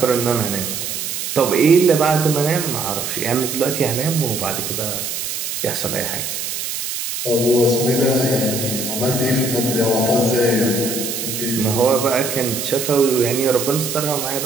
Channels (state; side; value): noise; right; hiss, 4 dB below the sound